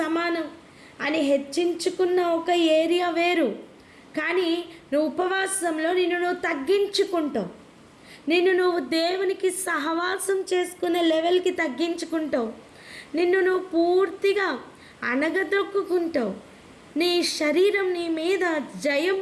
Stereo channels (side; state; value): both; identical; correlation 1.00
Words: సమానం అని హెచ్చించుకున్న ఒక ఏరియా వేరు. కానీ నువ్వు ఉపవాసంలో నిన్ను నువ్వు తగ్గించుకుంటావు, నిన్ను నువ్వు దేవునికి సహవాసం చేసుకునే లెవెల్కి తగ్గించుకుంటావు, నిన్ను నువ్వు పూర్తిగా అణగదొక్కుంటావు. నీ శరీరం నీ మీద జయం